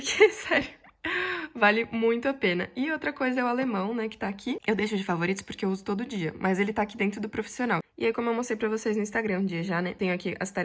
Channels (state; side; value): identical; both; correlation 1.00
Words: sério, vale muito a pena. E outra coisa é o alemão, né, que tá aqui. Eu deixo de favoritos porque eu uso todo dia, mas ele tá aqui dentro do profissional. E aí, como eu mostrei pra vocês no Instagram um dia já, né, tenho aqui as